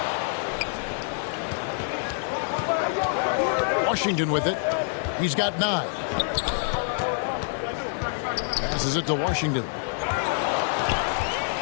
Washington with it. He's got 9. Passes it to Washington.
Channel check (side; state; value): right; silent; digital silence